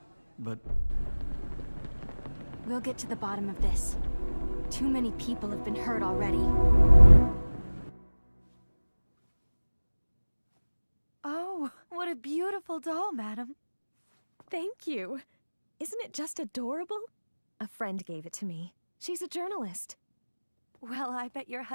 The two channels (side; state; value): both; inverted; correlation -1.00